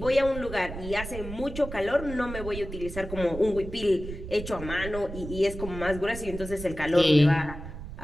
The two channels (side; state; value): right; noise; rumble, 10 dB below the sound